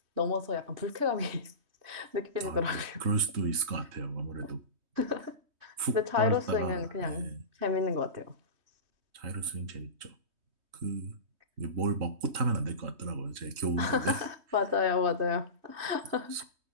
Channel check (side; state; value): left; late; 3.2 ms